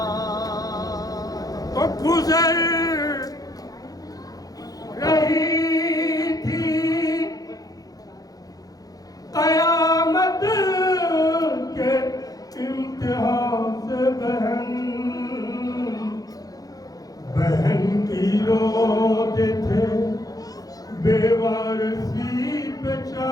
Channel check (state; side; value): late; right; 0.18 ms